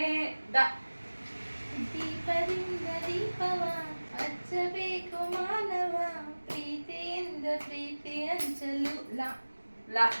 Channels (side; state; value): both; inverted; correlation -1.00